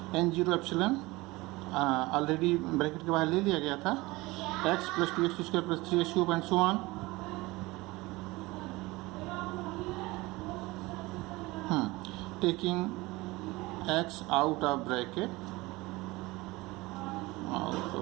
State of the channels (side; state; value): left; quieter; 21.4 dB